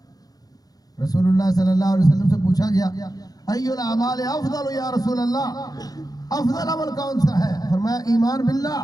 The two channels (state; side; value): late; right; 0.18 ms